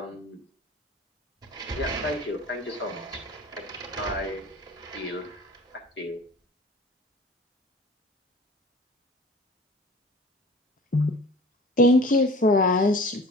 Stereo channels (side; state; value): both; normal; correlation 0.43